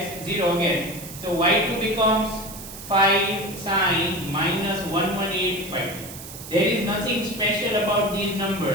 0 again. So y2 becomes 5 sine minus 118 pi t. There is nothing special about these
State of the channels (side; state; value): right; noise; hiss, 13 dB below the sound